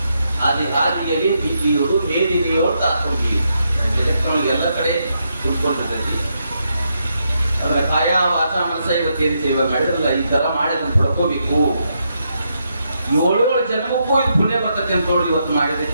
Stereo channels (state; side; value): inverted; both; correlation -0.80